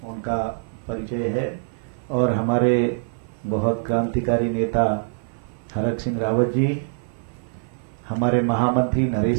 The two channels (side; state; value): left; silent; 56 dB below the other